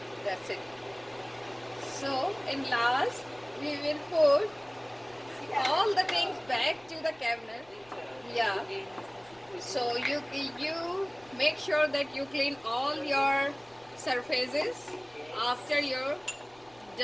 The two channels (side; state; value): left; noise; rumble, 28 dB below the sound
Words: that's it. So in last we will put all the things back to the cabinet. Yeah. So you make sure that you clean all your surfaces after you're